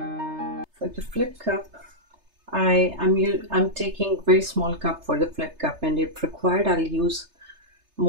For the flip cup, I'm taking very small cup for the flip cup, and if required I'll use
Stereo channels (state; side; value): late; left; 3.3 ms